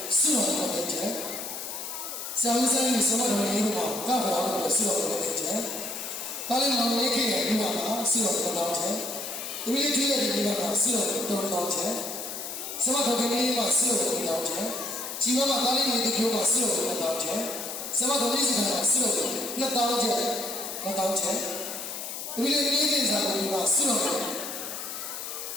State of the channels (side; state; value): left; noise; hiss, 7 dB below the sound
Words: စွန့်တော်တဲ့ချက်ဆရာကြီးဆိုင်ဆရာတော်ကြီးတို့ကောက်ပါလို့စွန့်တော်တဲ့ချက်ဒါလည်းမောင်လေးခေရဲ့ဒီမှာစွန့်တော်တောင်းချက်ဒီလေးကြီးရဲ့ဒီမှာစွန့်တော်တောင်းချက်ဆရာတော်ကြီးမှာစွန့်တော်တောင်းချက်ជីဝမှာဒါလေးတွေပြောမှာစွန့်တော်တောင်းချက်ဆရာတော်ကြီးကစွန့်တော်နှစ်တောင်းချက်နှစ်တောင်းချက်ဒီလေးကြီးစာကိုဒီမှာစွန့်တော်